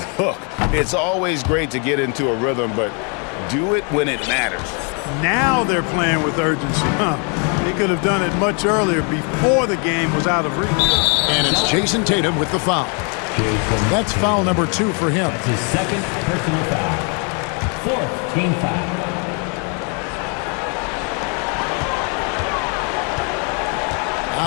Look, it's always great to get into a rhythm, but do it when it matters. Now they're playing with urgency. They could have done it much earlier, before the game was out of reach. And it's Jason Tatum with the foul. That's foul number 2 for him. That's his second personal foul. 4th team foul.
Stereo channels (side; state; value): right; quieter; 36.6 dB